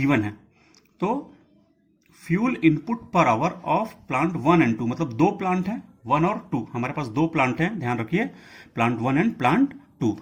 है। तो फ्यूल इनपुट पर आवर ऑफ प्लांट 1 and 2, मतलब दो प्लांट हैं 1 और 2, हमारे पास दो प्लांट हैं, ध्यान रखिए, प्लांट 1 and प्लांट 2,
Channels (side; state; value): both; identical; correlation 1.00